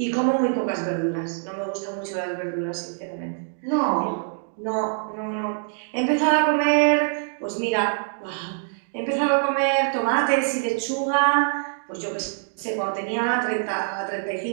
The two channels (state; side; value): silent; left; digital silence